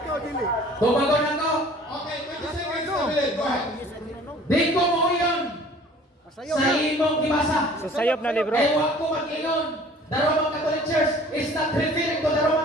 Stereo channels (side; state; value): both; normal; correlation 0.50